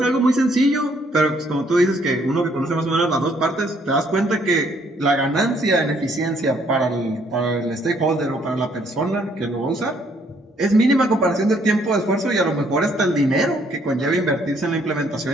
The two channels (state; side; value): normal; both; correlation 0.66